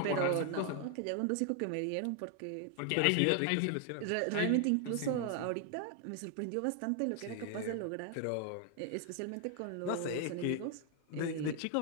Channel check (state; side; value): different; both; correlation 0.00